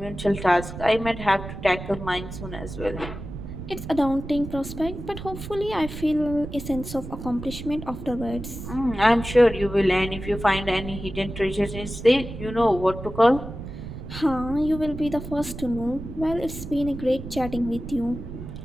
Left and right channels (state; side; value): noise; right; rumble, 10 dB below the sound